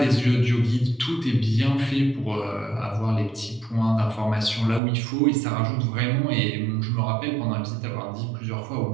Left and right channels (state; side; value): drops out; left; at 4.8 s